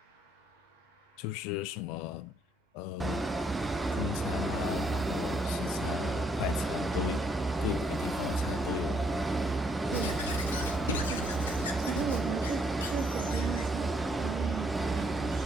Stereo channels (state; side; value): normal; both; correlation 0.71